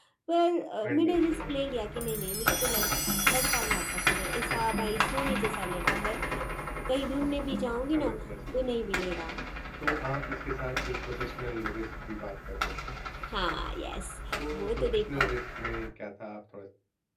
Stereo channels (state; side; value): identical; both; correlation 1.00